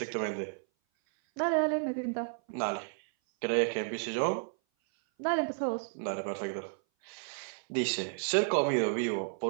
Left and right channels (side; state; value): left; silent; 56 dB below the other